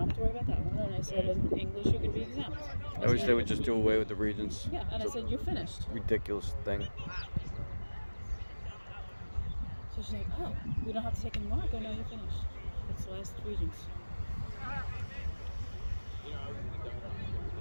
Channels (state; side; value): inverted; both; correlation -1.00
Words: have to worry about that one. And I said, in English, you could be exempt. I wish they would just do away with the Regents. Yeah, and I said, you're finished. Ridiculous thing. So she's like, oh, we don't have to take any more? I go, no, you're finished. It's the last Regents.